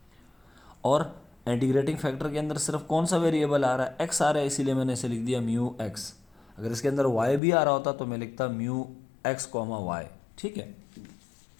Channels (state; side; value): drops out; right; at 7.4 s